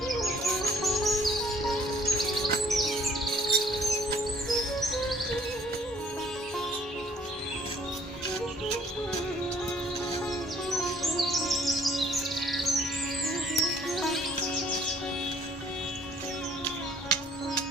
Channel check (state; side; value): normal; both; correlation 0.59